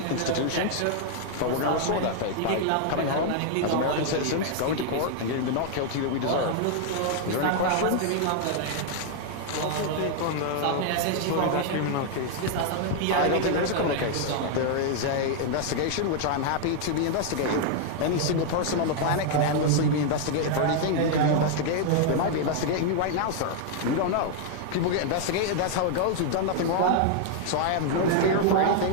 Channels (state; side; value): different; both; correlation 0.00